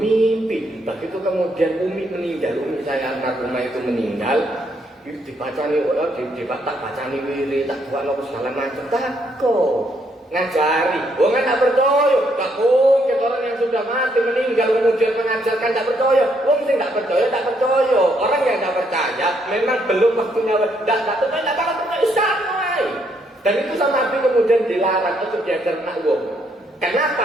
begitu kemudian Umi meninggal, Umi saya anak rumah itu meninggal. Dibacani orang, tak bacani wiri, tak buat apa segala macam. Takut ngajari, wong tak percaya. Tak mungkin orang yang sudah mati meninggal kemudian mengajarkan tak percaya. Wong sing tak percaya. Orang yang tak percaya memang belum waktunya. Tak percaya Islam. Dan itu sama Nabi kemudian dilarang untuk diajar nak wong.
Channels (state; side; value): normal; both; correlation 0.73